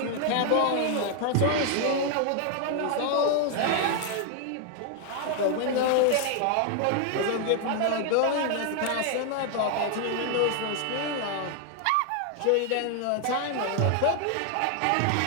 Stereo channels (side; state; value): both; different; correlation 0.00